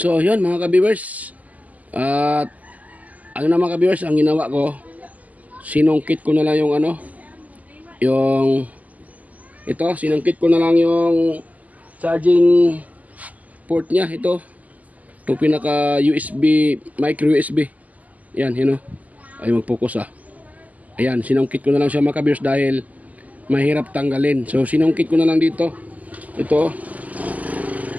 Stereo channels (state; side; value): late; left; 0.076 ms